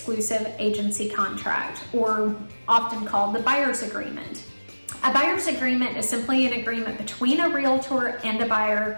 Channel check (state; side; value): inverted; both; correlation -1.00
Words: Agency Contract, or often called the Buyer's Agreement. A buyer's agreement is simply an agreement between a realtor and a